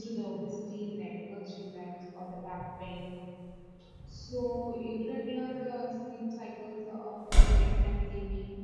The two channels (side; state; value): both; identical; correlation 1.00